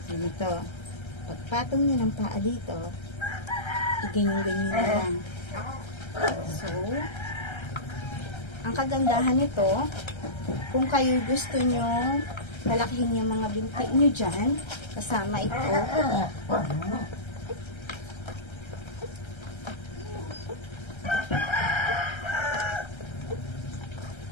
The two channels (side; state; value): right; late; 1.3 ms